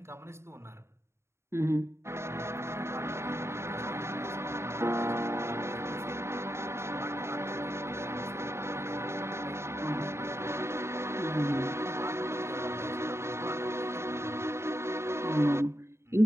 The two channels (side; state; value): left; late; 0.13 ms